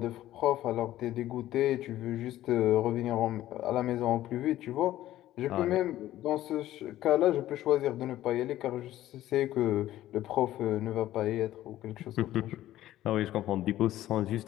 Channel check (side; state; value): right; quieter; 14.1 dB